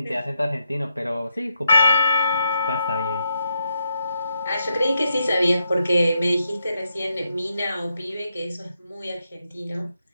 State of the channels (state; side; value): inverted; both; correlation -0.82